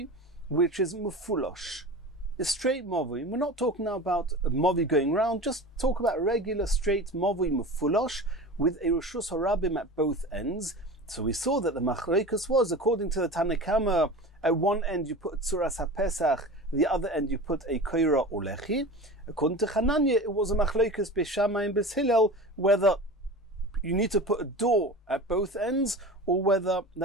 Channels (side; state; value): both; normal; correlation 0.33